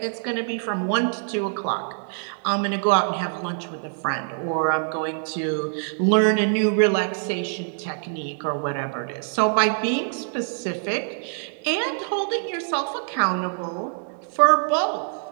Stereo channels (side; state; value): left; silent; digital silence